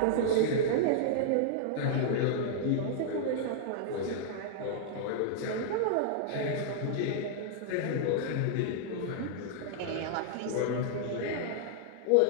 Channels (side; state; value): both; different; correlation -0.01